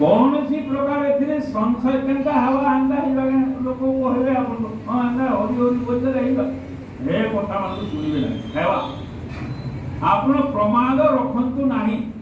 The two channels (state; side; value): identical; both; correlation 1.00